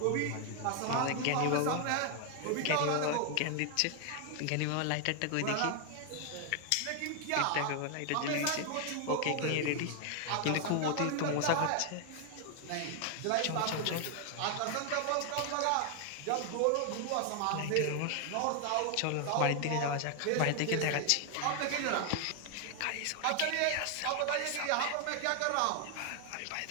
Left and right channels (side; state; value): both; different; correlation 0.00